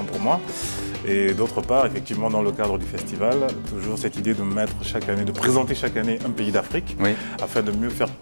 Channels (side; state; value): both; inverted; correlation -1.00